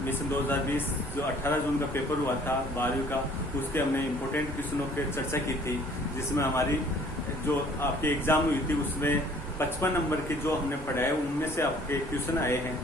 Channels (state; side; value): normal; both; correlation 0.55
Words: 2020 जो 18 जून का पेपर हुआ था 12वीं का, उसके हमने इम्पोर्टेंट क्वेश्चनों की चर्चा की थी, जिसमें हमारी जो आपके एग्जाम हुई थी उसमें 55 नंबर के जो हमने पढ़ाए उनमें से आपके क्वेश्चन आए हैं।